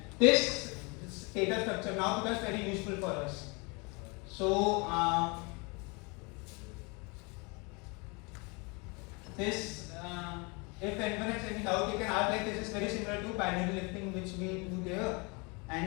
this data structure now becomes very useful for us. So this if anyone has any doubt, you can ask. Like this is very similar to binary lifting, which we do there.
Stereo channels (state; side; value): quieter; right; 29.7 dB